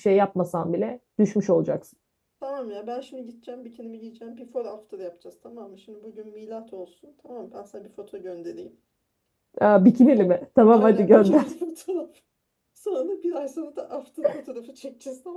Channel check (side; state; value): both; identical; correlation 1.00